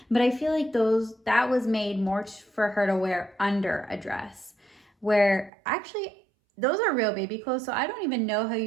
but I feel like that was made more for her to wear under a dress, where actually those are real baby clothes. So I don't even know how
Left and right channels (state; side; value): drops out; left; at 5.5 s